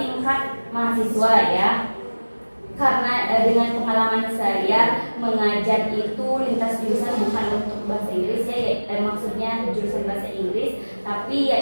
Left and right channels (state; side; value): inverted; both; correlation -1.00